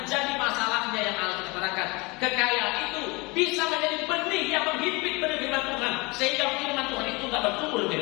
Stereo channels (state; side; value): quieter; right; 26.0 dB